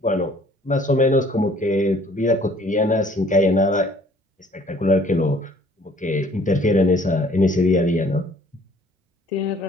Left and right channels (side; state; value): both; normal; correlation 0.57